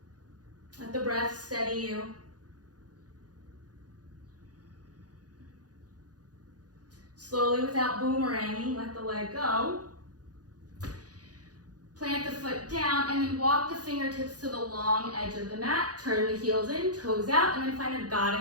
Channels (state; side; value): late; left; 0.68 ms